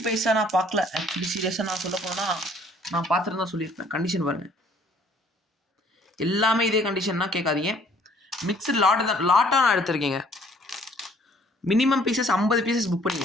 பைசா நான் பார்க்கல. ஆக்சுவலி சீரியஸாக நான் சொல்ல போனால் நான் பார்த்துட்டு தான் சொல்லியிருப்பேன். கண்டிஷன் பாருங்கள், எல்லாமே இதே கண்டிஷன்னா கேட்காதீங்க. மிக்சர் லாட்டாக நான் எடுத்திருக்கேங்க. மினிமம் பீசஸ் 50 பீசஸ் புக்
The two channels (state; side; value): normal; both; correlation 0.59